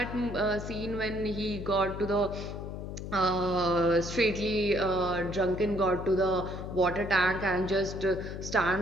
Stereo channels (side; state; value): left; noise; hum, 8 dB below the sound